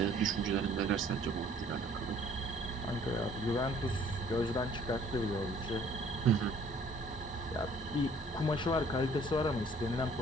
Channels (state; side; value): normal; both; correlation 0.57